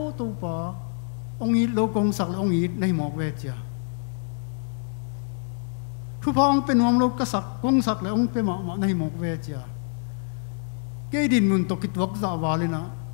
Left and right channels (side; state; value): right; silent; digital silence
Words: tu pa ong i lo kong sak ong i nei mok ve chia thu phong pen om lo ka sak kong sak le ong pe ma nei mok ve chia ke din mun to ki tuak za walina